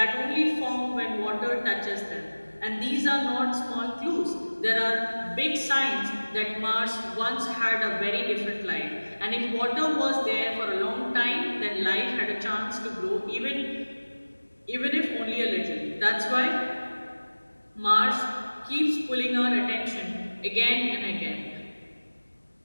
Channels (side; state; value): both; inverted; correlation -1.00